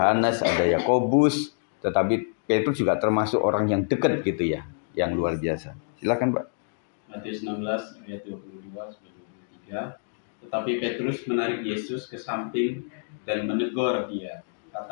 ada Yakobus, tetapi Petrus juga termasuk orang yang dekat gitu ya, yang luar biasa. Silakan Pak. Matius 16 ayat 22 sampai 23. Tetapi Petrus menarik Yesus ke samping dan menegur dia.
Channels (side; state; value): right; silent; digital silence